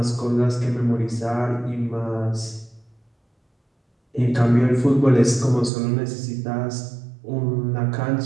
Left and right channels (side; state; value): left; drops out; at 5.7 s